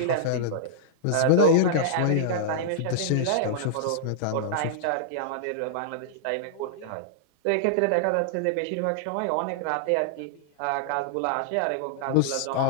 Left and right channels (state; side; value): different; both; correlation -0.02